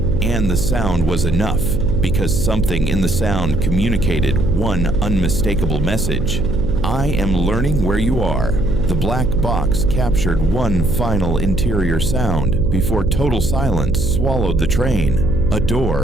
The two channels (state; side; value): noise; right; hum, 5 dB below the sound